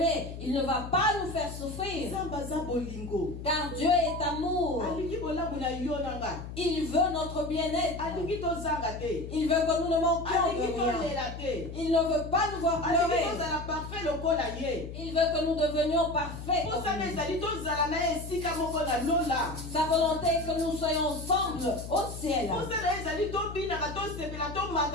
il ne va pas nous faire souffrir. Car Dieu est amour. Il veut notre bien-être. Il veut que nous ne manquions de rien. Il ne veut pas nous voir pleurer. Il veut que nous devenions parfaits comme lui. Sa volonté est que nous soyons ensemble au ciel.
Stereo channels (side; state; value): left; noise; hum, 10 dB below the sound